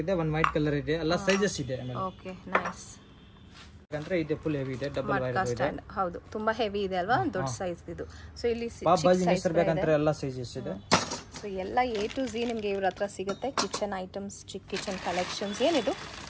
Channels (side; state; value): both; identical; correlation 1.00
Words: ಇದೆ, 1 ವೈಟ್ ಕಲರ್ ಇದೆ, ಎಲ್ಲ ಸೈಜಸ್ ಇದೆ. Okay, nice. ಬೇಕಂದ್ರೆ ಇದೆ ಫುಲ್ ಹೆವಿ ಇದೆ, ಡಬಲ್ ವೈರ್ ಇದೆ. ಹೌದು, ತುಂಬಾ ಹೆವಿ ಇದೆ ಅಲ್ವಾ, ದೊಡ್ಡ ಸೈಜ್ ಇದು. ಸೊ ಇಲ್ಲಿ ಸೈಜ್ ಬೇಕಂದ್ರೆ ಎಲ್ಲ ಸೈಜಸ್ ಇದೆ. ಸೊ ಎಲ್ಲ A to Z ನಿಮಗೆ ಇವ್ರ ಹತ್ರ ಸಿಗುತ್ತೆ. ಕಿಚನ್ ಐಟಮ್ಸ್, ಚಿಕ್ಕ ಕಿಚನ್ ಕಲೆಕ್ಷನ್ಸ್. ಏನಿದು?